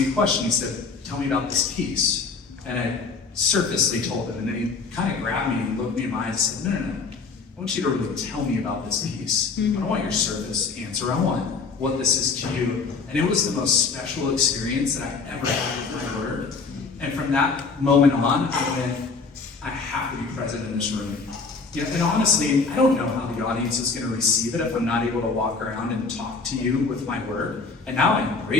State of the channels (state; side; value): quieter; right; 4.5 dB